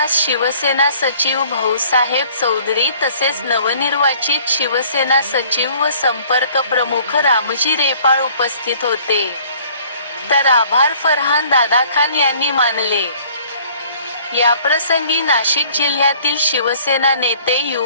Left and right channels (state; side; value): inverted; both; correlation -0.55